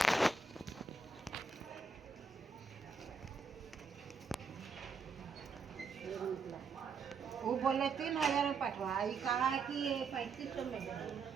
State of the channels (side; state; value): left; quieter; 4.7 dB